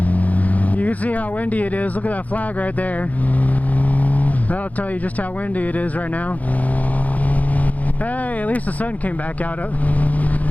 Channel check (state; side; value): late; right; 0.075 ms